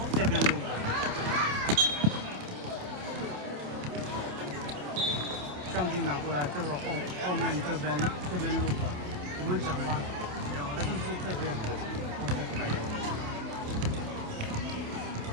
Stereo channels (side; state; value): left; late; 28 ms